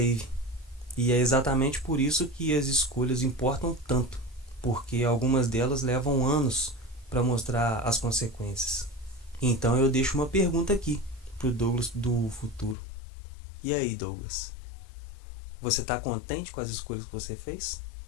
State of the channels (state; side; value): drops out; right; at 12.8 s